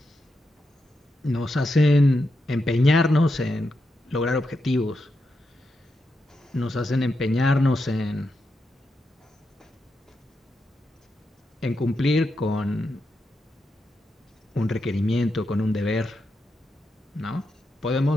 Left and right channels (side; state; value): both; normal; correlation 0.86